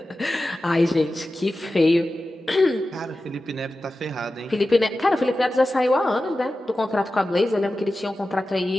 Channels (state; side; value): normal; both; correlation 0.94